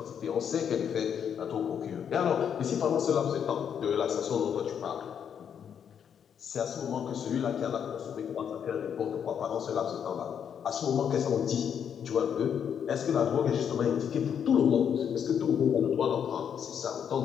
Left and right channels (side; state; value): right; quieter; 8.1 dB